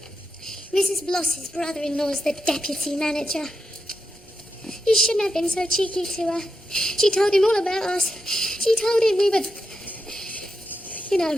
Mrs. Bloss's brother-in-law's the deputy manager. You shouldn't have been so cheeky to her. She told him all about us. She told him we were... You know...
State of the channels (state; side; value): normal; both; correlation 0.86